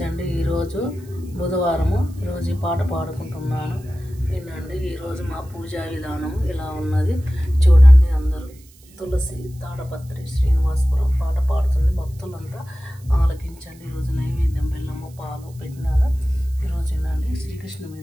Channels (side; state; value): right; noise; hiss, 27 dB below the sound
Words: ఈరోజు బుధవారము, ఈరోజు ఈ పాట పాడుకుంటున్నాను, వినండి. ఈరోజు మా పూజా విధానం ఇలా ఉన్నది, చూడండి అందరూ. తులసి తాడపత్రి శ్రీనివాసపురం పాట పాడుతుంది, భక్తులంతా ఆలకించండి. ఈరోజు నైవేద్యం బెల్లము పాలు పెట్టినాను. ఈరోజు వినండి, శ్రీకృష్ణ